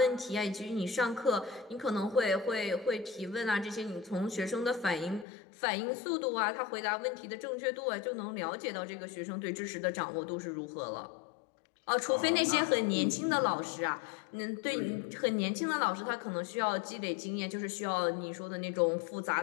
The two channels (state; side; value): drops out; right; at 5.2 s